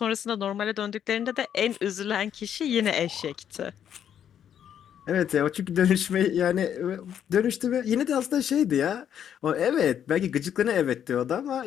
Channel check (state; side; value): quieter; right; 9.3 dB